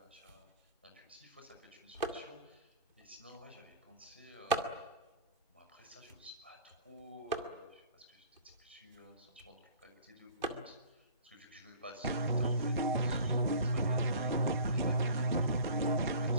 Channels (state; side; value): inverted; both; correlation -0.44